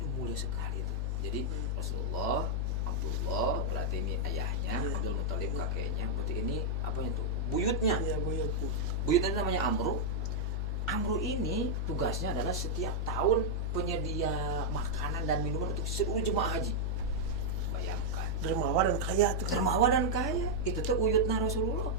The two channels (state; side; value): normal; both; correlation -0.03